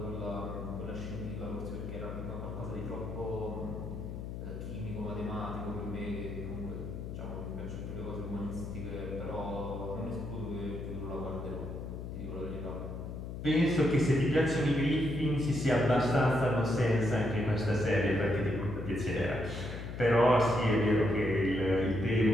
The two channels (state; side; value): noise; left; hum, 7 dB below the sound